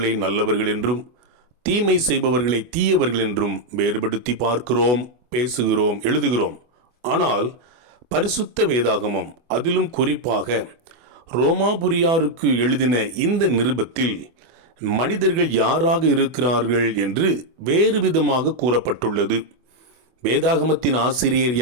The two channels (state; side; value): late; left; 24 ms